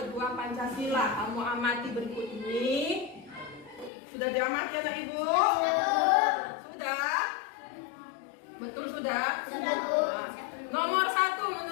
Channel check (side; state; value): right; drops out; at 3.9 s